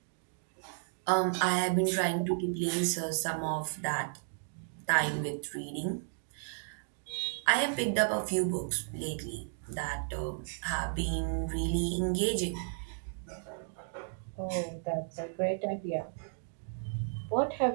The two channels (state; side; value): silent; left; digital silence